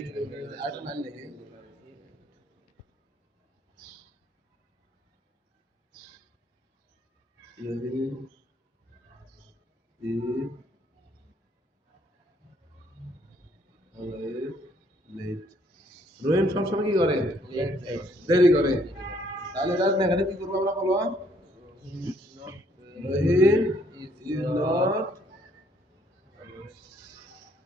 আরেকটা line লিখি। Rahim is always late। রহিম সবসময় কি করে? দেরি করে। তাহলে এটা নেগেটিভ কি করবো আমরা বলো? রহিম is not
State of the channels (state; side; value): normal; both; correlation 0.66